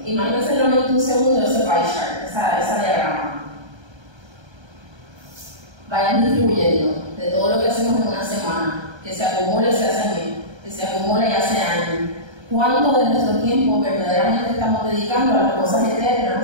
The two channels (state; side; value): late; left; 1.3 ms